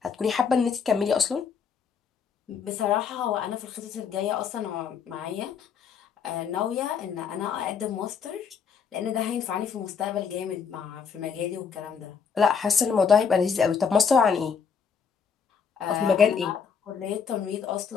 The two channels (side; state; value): right; quieter; 6.4 dB